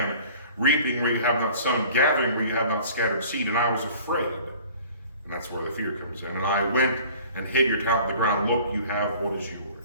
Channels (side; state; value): both; inverted; correlation -0.48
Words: reaping where you have not sown, gathering where you have not scattered seed, and I was afraid. And that's where the fear comes in. And I went and hid your talent in the ground. Look, you have what is